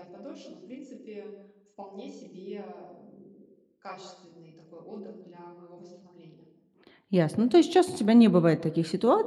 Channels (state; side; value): identical; both; correlation 1.00